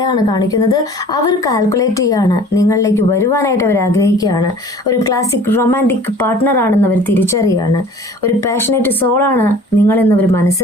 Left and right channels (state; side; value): normal; both; correlation 0.47